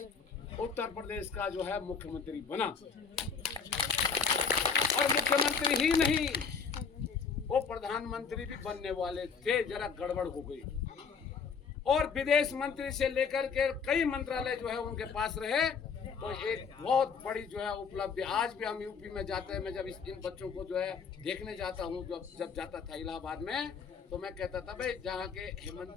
उत्तर प्रदेश का जो है मुख्यमंत्री बना, और मुख्यमंत्री ही नहीं वो प्रधानमंत्री भी बनने वाले थे, जरा गड़बड़ हो गई। और विदेश मंत्री से लेकर के कई मंत्रालय जो है उनके पास रहे, तो एक बहुत बड़ी जो है उपलब्धि। आज भी हम यूपी में जाते हैं, मैं जब इन बच्चों को जो है देखने जाता हूँ, जब जाता था इलाहाबाद में, तो मैं कहता था भाई जहाँ के हेमंत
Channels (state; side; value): quieter; right; 5.7 dB